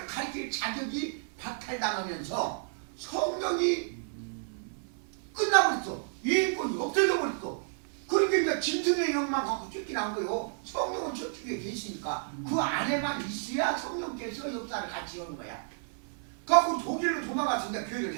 가르칠 자격이 박탈당하면서 성령이 끝나버렸어. 유인권이 없어져 버렸어. 그러니까 이제 짐승의 영만 갖고 쫓기는 거예요. 성령은 천주교에 계시니까 그 안에만 있어야 성령께서 역사를 같이 하는 거야. 그래갖고 독일로 도망가서 이제 교회를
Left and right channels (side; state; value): left; silent; 57 dB below the other